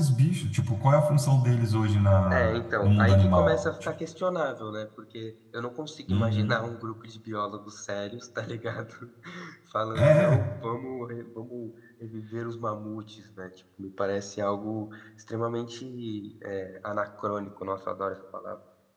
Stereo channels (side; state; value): both; identical; correlation 1.00